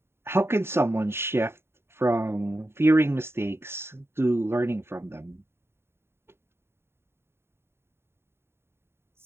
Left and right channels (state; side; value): late; left; 0.12 ms